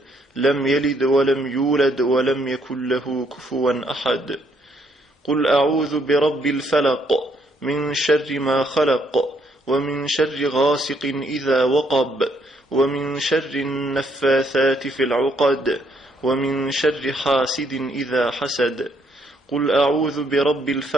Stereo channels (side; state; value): both; normal; correlation 0.71